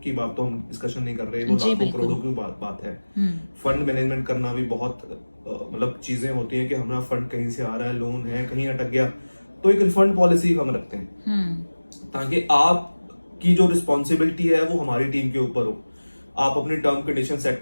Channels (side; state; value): both; inverted; correlation -1.00